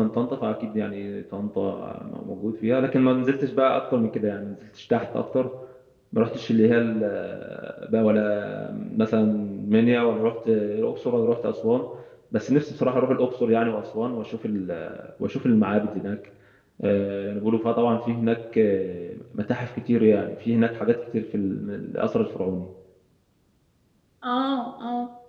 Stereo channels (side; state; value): both; identical; correlation 1.00